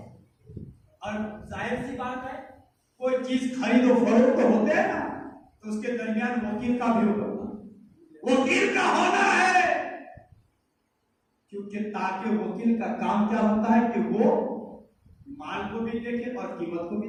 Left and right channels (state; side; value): identical; both; correlation 1.00